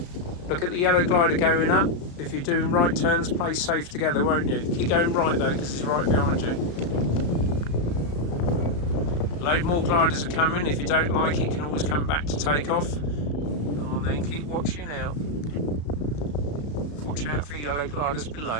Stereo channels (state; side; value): late; right; 35 ms